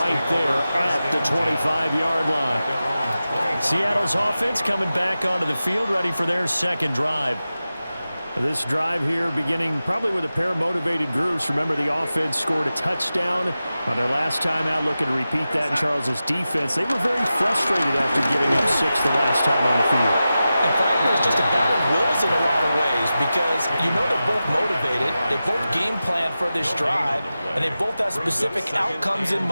there at the 25-yard line. Seattle's offense coming back onto the field, ready for their second drive. This drive here beginning probably with a pair of motivated groups. Remember, the offense scored a touchdown on their last time out, looking to repeat that in Charles' defense. They were very frustrated after giving up 6 the last time on the field. And frankly, it's just a battle of wills in a lot of ways because you know they're both motivated. They both game plan for this drive, and they both have specific outcomes in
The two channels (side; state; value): both; inverted; correlation -0.93